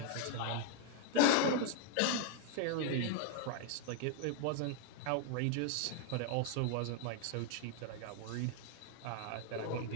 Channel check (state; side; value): different; both; correlation 0.01